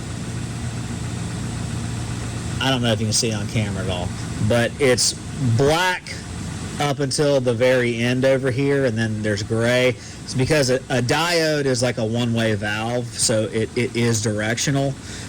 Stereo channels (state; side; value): identical; both; correlation 1.00